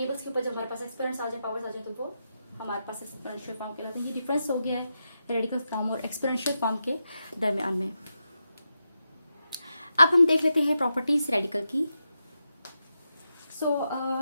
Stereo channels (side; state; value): both; inverted; correlation -0.87